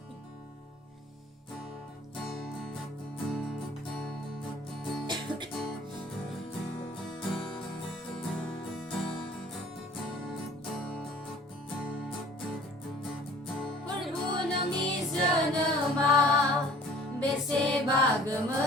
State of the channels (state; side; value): normal; both; correlation 0.51